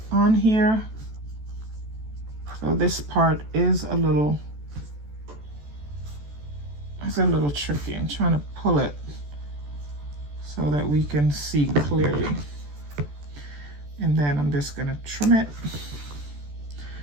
on here. So this part is a little tricky. I'm trying to pull it so that we can see clearly. And then I'm just gonna trim it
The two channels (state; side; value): late; left; 14 ms